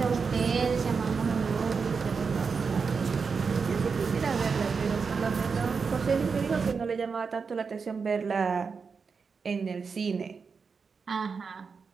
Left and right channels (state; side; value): quieter; left; 5.3 dB